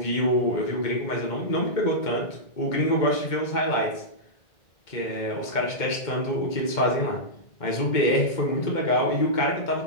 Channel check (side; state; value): right; late; 2.1 ms